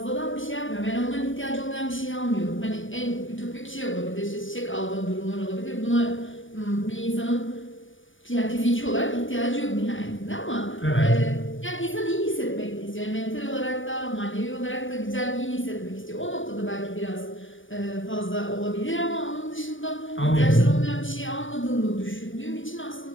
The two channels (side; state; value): right; late; 0.57 ms